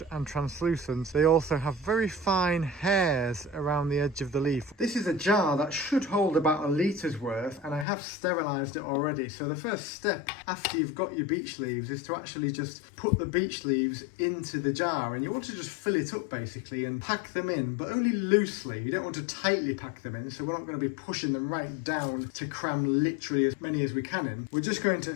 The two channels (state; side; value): drops out; right; at 7.9 s